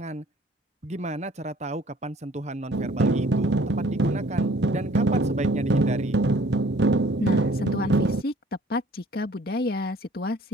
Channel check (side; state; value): both; normal; correlation 0.55